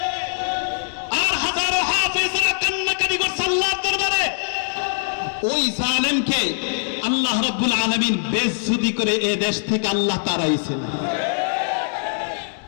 আর হাজারো হাফেজরা কান্নাকাটি করছে আল্লাহর দরবারে। ওই জালেমকে আল্লাহ রাব্বুল আলামিন বেইজ্জতি করে এ দেশ থেকে আল্লাহ তাড়াইছেন।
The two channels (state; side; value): silent; right; digital silence